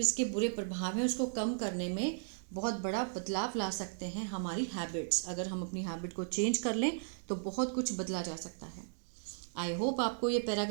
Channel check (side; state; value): left; silent; digital silence